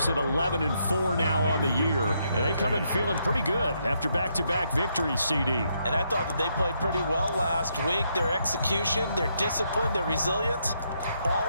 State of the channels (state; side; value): inverted; both; correlation -0.76